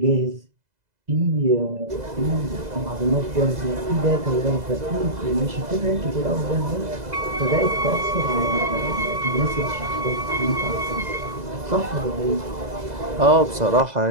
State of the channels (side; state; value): left; late; 2.0 ms